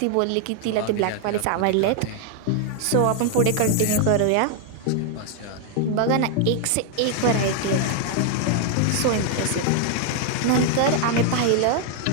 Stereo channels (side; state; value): both; different; correlation 0.00